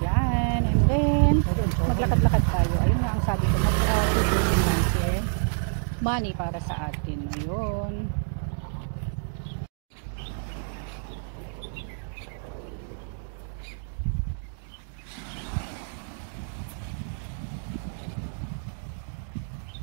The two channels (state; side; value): silent; left; digital silence